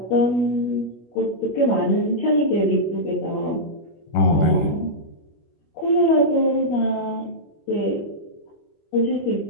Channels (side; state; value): right; late; 25 ms